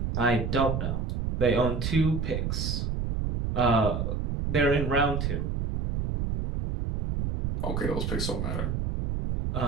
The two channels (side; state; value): right; noise; rumble, 1 dB below the sound